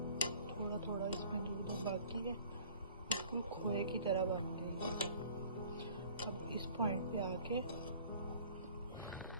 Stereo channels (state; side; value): inverted; both; correlation -0.51